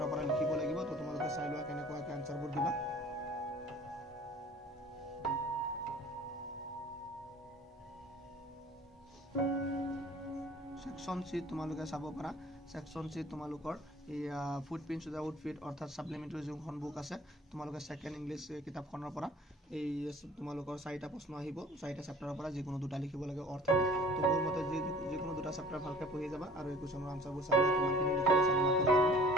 পৰা লিখিব লাগিব তো তোমালোকে চাই লোৱা কেনেকুৱাকে আনসাৰবোৰ দিবা সেকশন সি তোমালোকে চাব পাৰা সেকশন সি তোমালোকৰ ফুটপ্ৰিন্টস উইথ আউটফিট অৰ্থাৎ সাপ্লিমেন্টাৰী যোনখন বুক আছে তোমালোকে সেকেন্ড ইংলিশ কিতাপখনৰ পৰা এই তোমালোকৰ 4টা প্ৰশ্ন আহিব 4টা চেপ্টাৰৰ পৰা যিকোনো দুটা লিখিব লাগে অৰ্থ তো মোৰ মতে যিকোনো দুটা চেপ্টাৰ ভালকে পঢ়ি যাবা আৰু এই কোৱেশ্যনৰ আনসাৰবোৰ চাবা কিমানখিনি লিখিব চাবা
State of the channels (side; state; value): both; normal; correlation 0.50